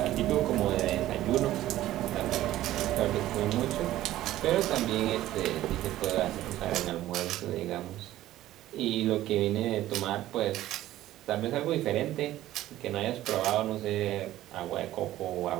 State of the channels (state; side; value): quieter; left; 14.5 dB